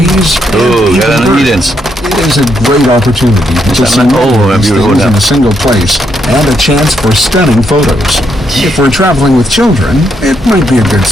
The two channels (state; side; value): normal; both; correlation 0.77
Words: Oh, and even Garden of Eden. birds. It is a great opportunity to see all of these beautiful things in now. a single place and a chance for stunning photos. If we're traveling with children, it might be a good